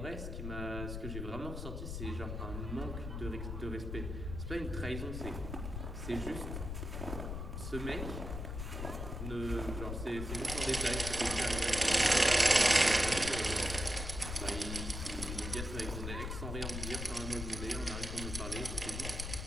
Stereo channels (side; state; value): left; noise; rumble, 5 dB below the sound